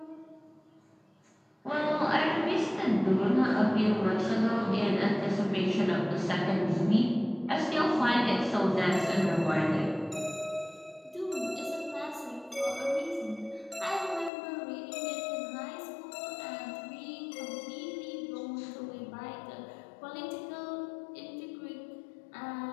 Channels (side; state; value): right; drops out; at 14.3 s